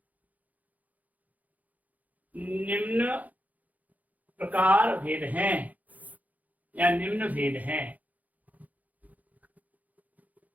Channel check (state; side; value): late; left; 0.078 ms